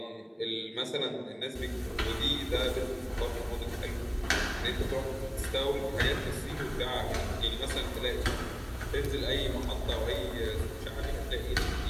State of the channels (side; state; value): both; identical; correlation 1.00